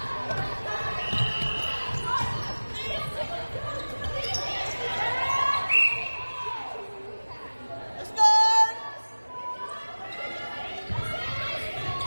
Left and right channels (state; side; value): inverted; both; correlation -1.00